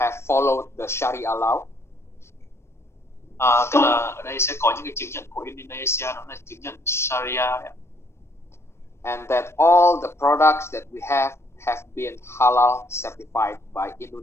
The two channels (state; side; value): late; right; 0.13 ms